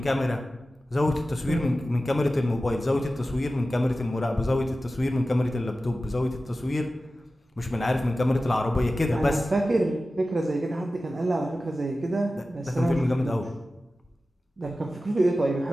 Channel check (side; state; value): both; normal; correlation 0.95